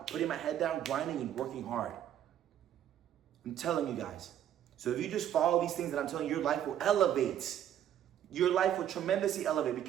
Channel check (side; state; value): left; quieter; 10.6 dB